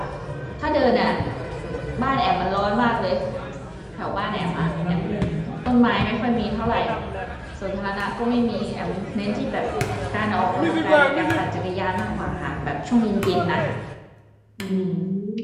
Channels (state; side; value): identical; both; correlation 1.00